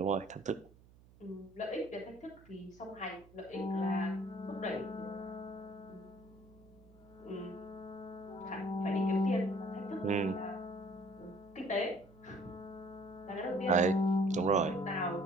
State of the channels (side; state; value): right; noise; hum, 24 dB below the sound